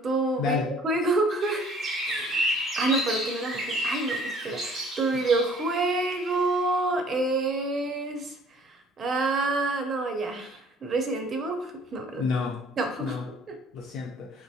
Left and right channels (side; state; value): both; normal; correlation 0.55